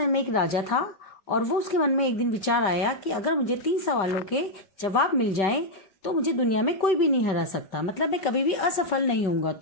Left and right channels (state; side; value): late; right; 5.2 ms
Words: में एक राजा था और वो उसके मन में एक दिन विचार आया कि अगर मुझे 3 सवालों के जवाब मिल जाएं तो मुझे दुनिया में कोई भी नहीं हरा सकता, मतलब मैं कभी भी असफल नहीं होऊंगा।